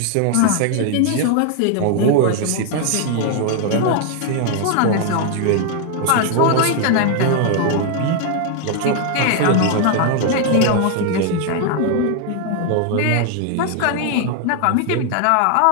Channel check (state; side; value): different; both; correlation 0.00